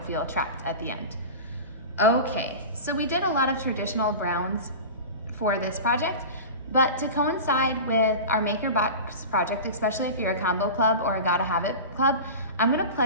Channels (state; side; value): inverted; both; correlation -0.30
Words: feel trapped at the end. Okay, so we did a lot of traditional browns for this project, but to coincide with our MakerBox project, especially if you're a combo club or a Gotta Have It club, I'm gonna